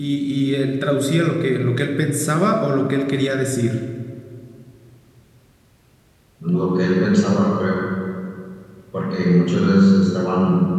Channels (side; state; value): both; identical; correlation 1.00